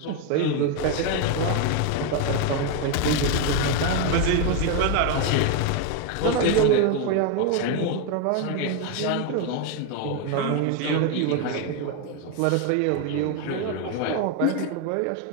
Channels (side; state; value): both; different; correlation 0.01